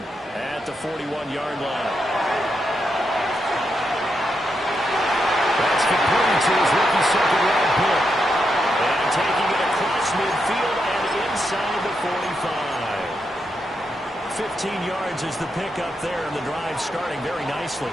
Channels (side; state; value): both; normal; correlation 0.83